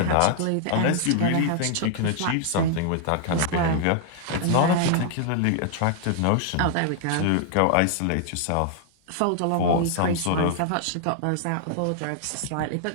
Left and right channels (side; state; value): both; different; correlation -0.01